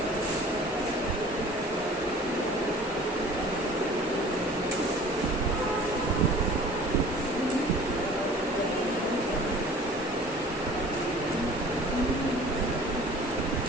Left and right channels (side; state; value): left; noise; hum, 27 dB below the sound